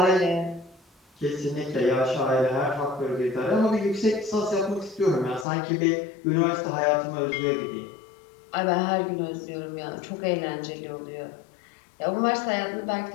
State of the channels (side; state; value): right; drops out; at 5.5 s